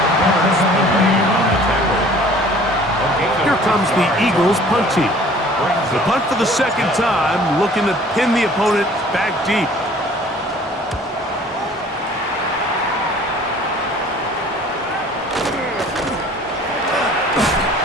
tackle. Here comes the Eagles punt team. The punt for the 2nd time, looking to pin the opponent back deep.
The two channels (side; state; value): both; normal; correlation 0.51